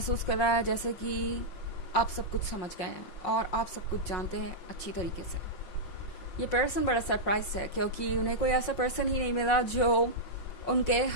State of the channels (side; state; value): right; late; 5.5 ms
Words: कर रहा है जैसे कि आप सब कुछ समझ गए हैं और आप सब कुछ जानते हैं अच्छी तरीके से। ये पर्सन बड़ा सरप्राइज है क्योंकि उन्हें कोई ऐसा पर्सन ही नहीं मिला जो उनके